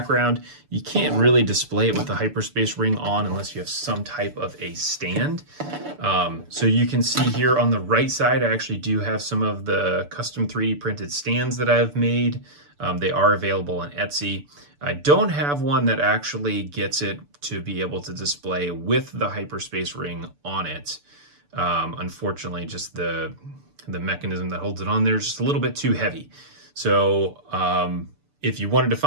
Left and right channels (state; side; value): late; left; 6.9 ms